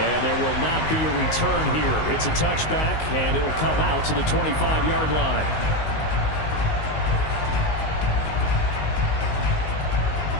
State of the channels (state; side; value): late; right; 19 ms